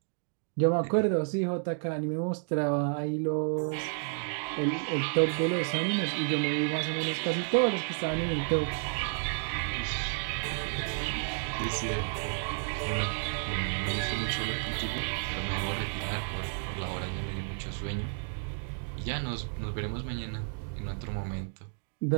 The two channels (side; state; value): left; silent; 57 dB below the other